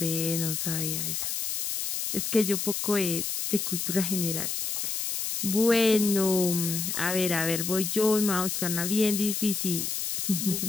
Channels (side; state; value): left; noise; hiss, 2 dB below the sound